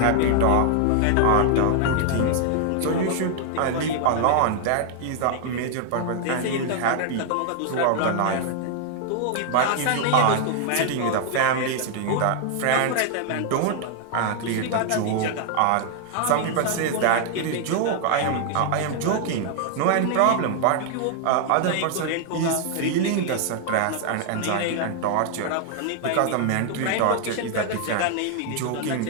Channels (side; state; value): both; different; correlation 0.00